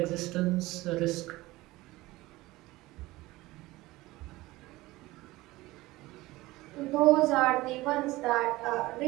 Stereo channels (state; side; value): quieter; left; 19.2 dB